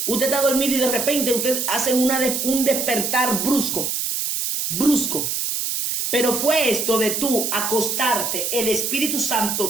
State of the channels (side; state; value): right; noise; hiss, 1 dB below the sound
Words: usted está dormido y de repente usted hace un despertar brusco. Brusco. Pero fue esto de tú acostarte, el Espíritu Santo,